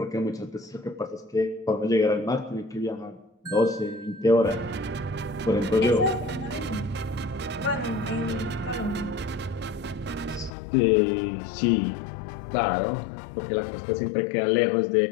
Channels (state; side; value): drops out; right; at 10.5 s